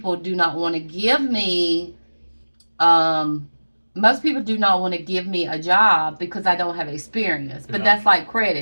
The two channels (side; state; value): both; inverted; correlation -1.00